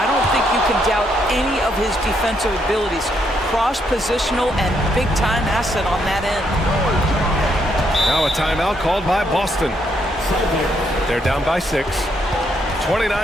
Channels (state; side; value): normal; both; correlation 0.75